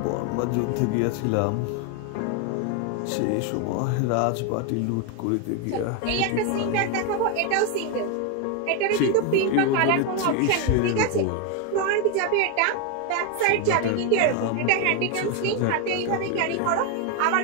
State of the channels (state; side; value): different; both; correlation 0.01